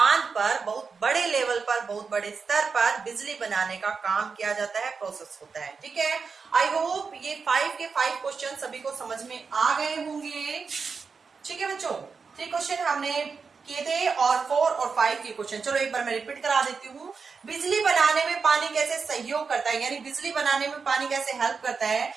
पर बहुत बड़े लेवल पर, बहुत बड़े स्तर पर बिजली बनाने का काम किया जाता है, प्रोसेस होता है, ठीक है। आई होप ये 5 के 5 क्वेश्चन सभी को समझ में आ गए होंगे, ठीक है बच्चों। 3 क्वेश्चन हमने किए थे और 4 और 5 के क्वेश्चन, चलो एक बार मैं रिपीट करा देती हूँ। बिजली बनाने में पानी कैसे सहयोग करता है, यानी बिजली बनाने में पानी कैसे हेल्प करता है।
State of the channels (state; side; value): quieter; left; 5.2 dB